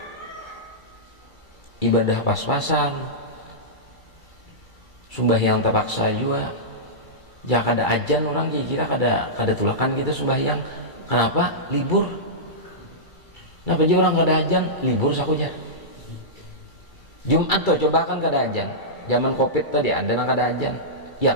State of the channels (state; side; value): late; right; 2.3 ms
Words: ibadah pas-pasan sembahyang terpaksa juga. Ya kada ajan orang kira kada tulakan kita sembahyang. Kenapa? Libur. Kenapa aja orang kada ajan? Libur sakujar. Jumat tuh coba kan kada ajan. Zaman Covid tadi ada nang kada ajan.